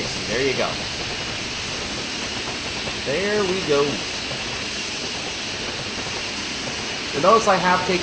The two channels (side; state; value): both; identical; correlation 1.00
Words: There you go. There we go. You'll notice I have